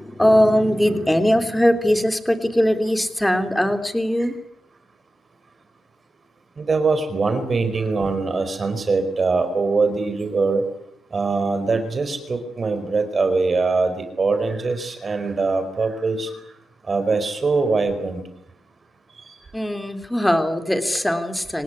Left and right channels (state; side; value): normal; both; correlation 0.93